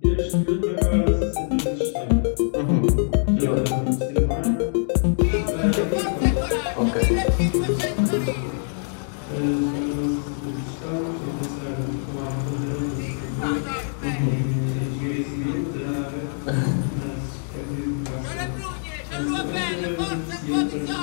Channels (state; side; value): silent; right; 63 dB below the other